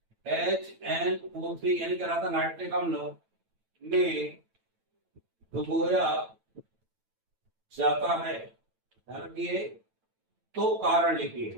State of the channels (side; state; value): left; late; 9.0 ms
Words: HNO3 यानी क्या था नाइट्रिक अम्ल में डुबोया जाता है। ध्यान रखिए, तो कारण